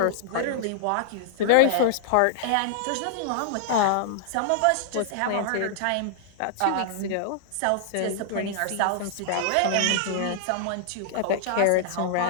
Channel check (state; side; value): different; both; correlation -0.01